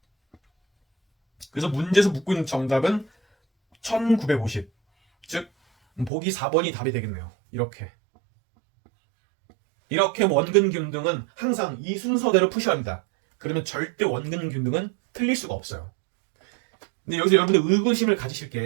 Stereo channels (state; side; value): drops out; left; at 6.1 s